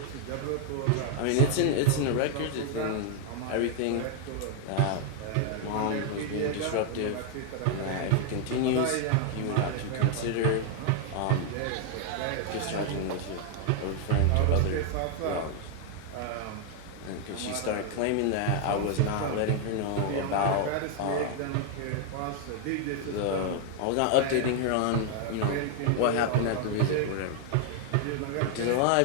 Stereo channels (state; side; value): different; both; correlation 0.00